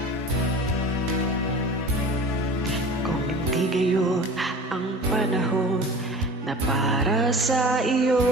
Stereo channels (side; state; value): both; normal; correlation 0.38